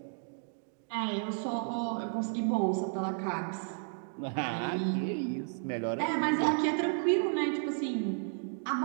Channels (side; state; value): left; silent; 56 dB below the other